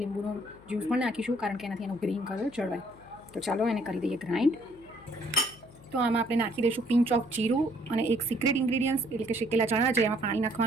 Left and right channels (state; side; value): noise; left; hum, 23 dB below the sound